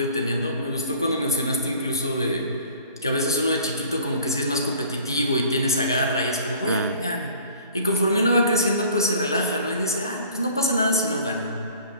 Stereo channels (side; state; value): both; inverted; correlation -0.50